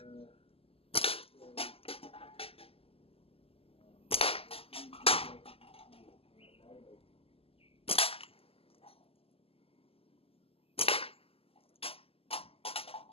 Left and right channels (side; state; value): right; late; 0.28 ms